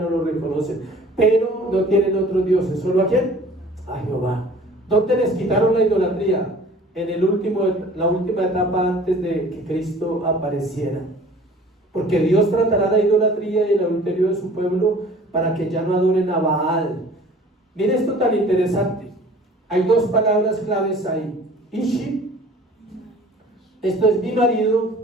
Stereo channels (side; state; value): both; normal; correlation 0.48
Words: lo reconocen, pero no tienen otros dioses, solo ¿a quién? A Jehová. ¿Dónde les quitaron la idolatría? En la última etapa antes de que Cristo apareciera. Porque Dios tratará la idolatría y el adulterio de su pueblo para que ya no adoren a Baal. Mire esto tan interesante. Hay dos palabras claves ahí. Ishi, esto es mi